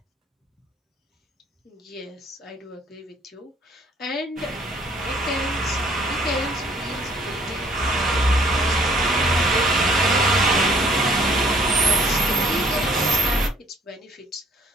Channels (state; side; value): normal; both; correlation 0.59